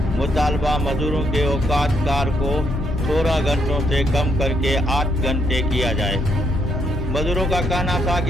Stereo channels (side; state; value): both; normal; correlation 0.75